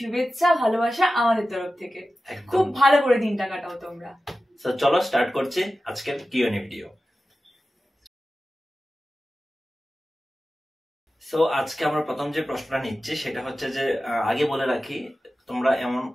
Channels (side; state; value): both; normal; correlation 0.94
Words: ভালোবাসা আমাদের তরফ থেকে। খুব ভালো করে দিনটা কাটাও তোমরা। সো চলো স্টার্ট করছি আজকের কিউএনএ ভিডিও। সো আজকে আমরা প্রথম যে প্রশ্নটা নিচ্ছি সেটা হচ্ছে যে, আগে বলে রাখি, তোমরা এমন